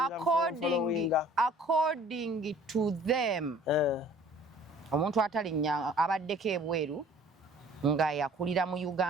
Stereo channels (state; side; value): normal; both; correlation 0.52